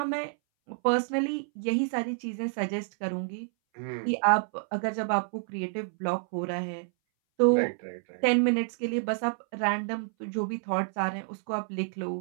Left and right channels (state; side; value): silent; left; 59 dB below the other